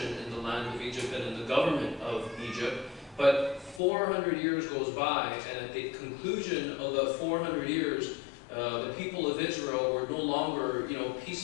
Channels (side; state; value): right; drops out; at 3.8 s